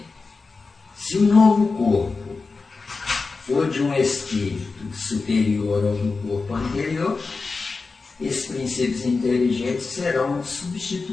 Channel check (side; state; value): right; quieter; 4.2 dB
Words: Se o novo corpo for de um espírito superior ao do corpo anterior, esses princípios inteligentes serão